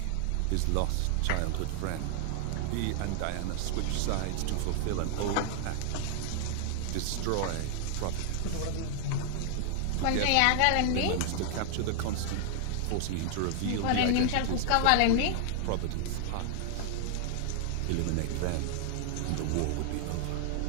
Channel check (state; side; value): different; both; correlation 0.00